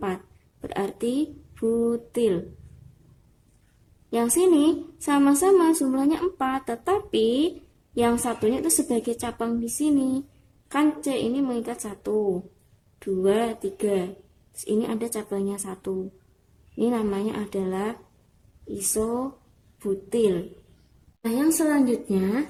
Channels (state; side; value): identical; both; correlation 1.00